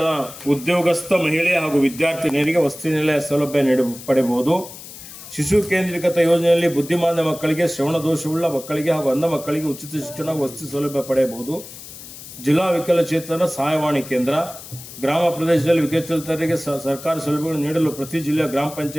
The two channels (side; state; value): left; noise; hiss, 15 dB below the sound